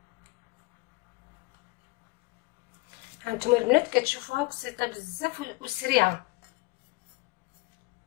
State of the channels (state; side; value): quieter; right; 23.6 dB